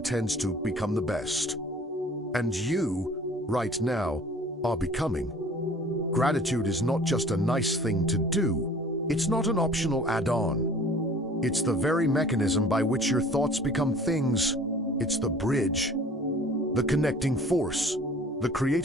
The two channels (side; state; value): both; normal; correlation 0.48